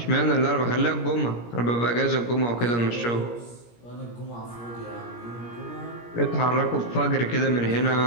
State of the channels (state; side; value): late; right; 17 ms